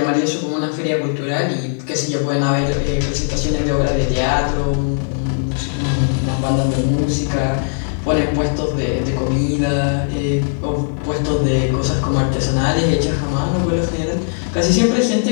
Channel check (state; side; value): silent; right; digital silence